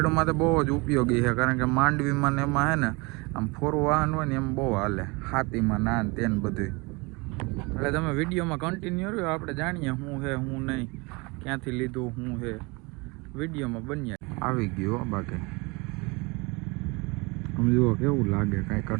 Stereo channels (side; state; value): left; quieter; 27.0 dB